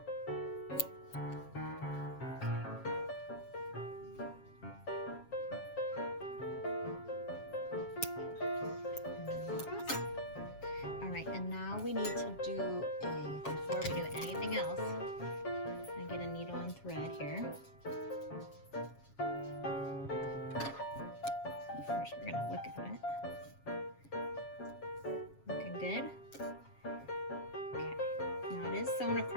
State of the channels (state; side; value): late; right; 7.3 ms